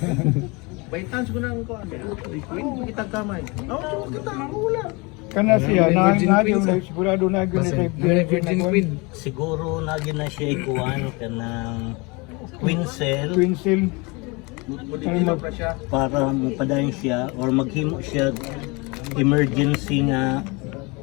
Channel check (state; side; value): quieter; right; 27.3 dB